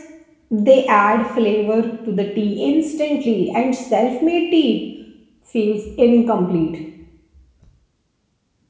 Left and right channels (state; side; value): identical; both; correlation 1.00